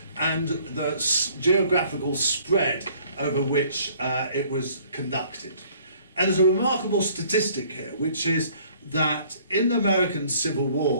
and the geographical spread over which it was conducted. And there's a remarkable statistic here, which is that in the American Civil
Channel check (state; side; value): inverted; both; correlation -0.58